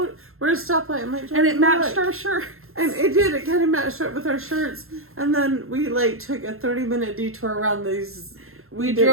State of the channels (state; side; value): late; left; 0.61 ms